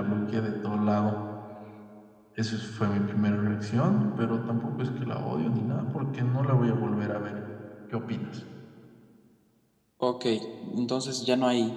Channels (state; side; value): identical; both; correlation 1.00